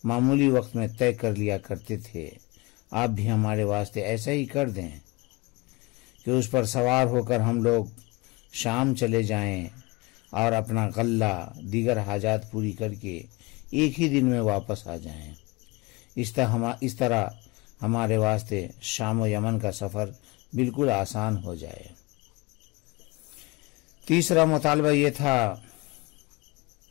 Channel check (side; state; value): right; quieter; 24.7 dB